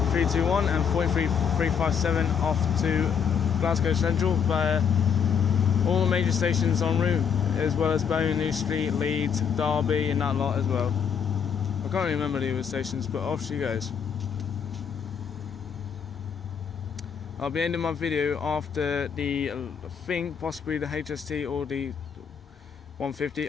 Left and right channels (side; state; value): right; quieter; 7.2 dB